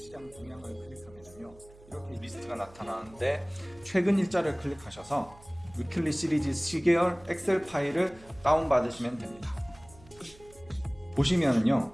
동향을 클릭하면요, 이렇게 리스트가 나타나는데 최근 일자를 클릭하셔서 위클리 시리즈 시계열 엑셀 파일을 다운받으시면 됩니다. 보시면은요,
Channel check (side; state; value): right; noise; hum, 23 dB below the sound